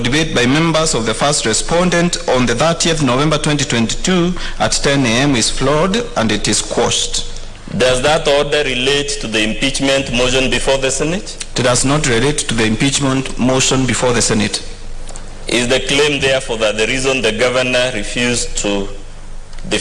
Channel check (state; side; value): identical; both; correlation 1.00